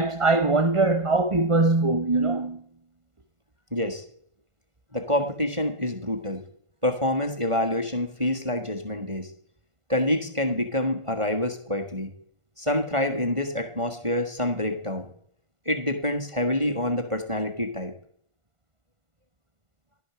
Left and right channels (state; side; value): late; left; 1.5 ms